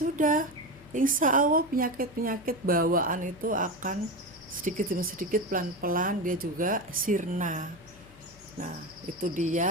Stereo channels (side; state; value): left; noise; hum, 24 dB below the sound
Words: insya Allah penyakit-penyakit bawaan itu akan sedikit demi sedikit, pelan-pelan dia juga sirna. Nah, itu